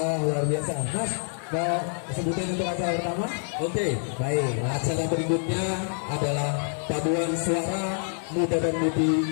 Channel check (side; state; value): right; silent; 60 dB below the other